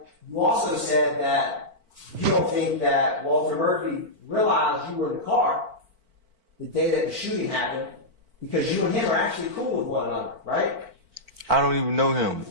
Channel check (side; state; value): left; late; 4.5 ms